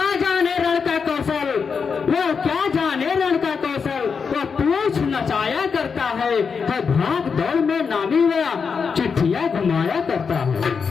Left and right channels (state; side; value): quieter; right; 5.8 dB